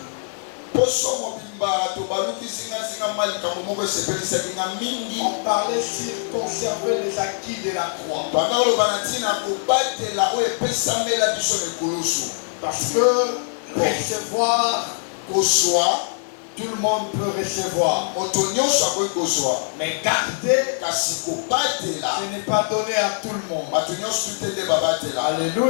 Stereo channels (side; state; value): right; silent; 57 dB below the other